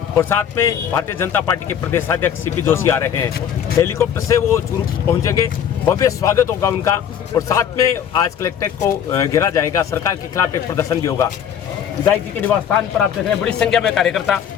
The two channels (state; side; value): quieter; right; 8.8 dB